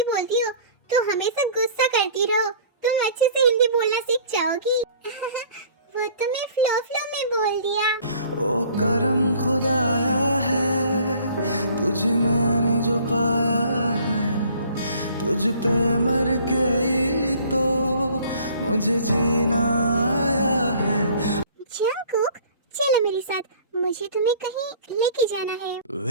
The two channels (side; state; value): both; inverted; correlation -0.52